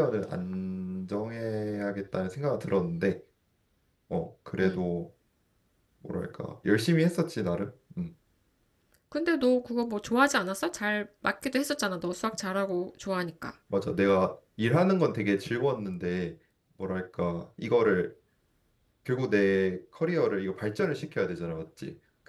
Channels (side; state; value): both; identical; correlation 1.00